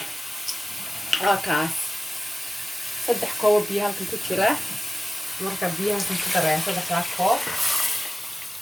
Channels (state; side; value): normal; both; correlation 0.96